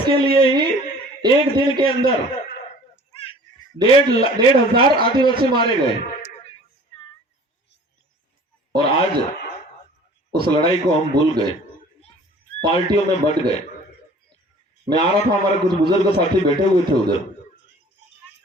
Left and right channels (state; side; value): normal; both; correlation 0.48